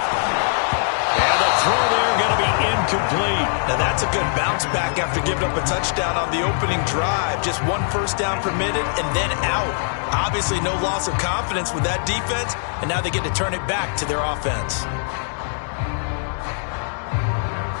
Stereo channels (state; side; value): silent; right; digital silence